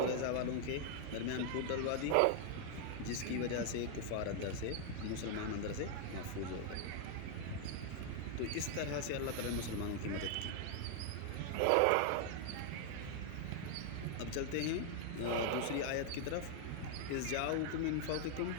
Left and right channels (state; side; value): different; both; correlation 0.00